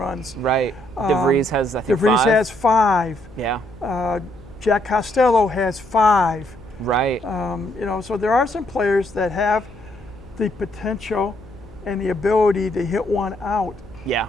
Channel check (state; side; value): noise; left; hum, 22 dB below the sound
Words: Right. DeVries has, I think, DeVries 5. has 5. Yeah. Jack Costello has 5. Right. You know, so there are some players that have the potential and the ability to hit one out. Yeah.